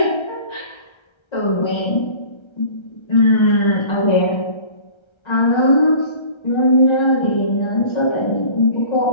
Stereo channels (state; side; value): late; right; 1.3 ms